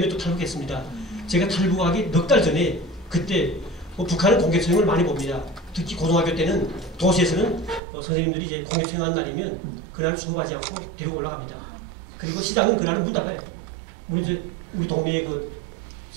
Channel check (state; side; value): drops out; left; at 7.8 s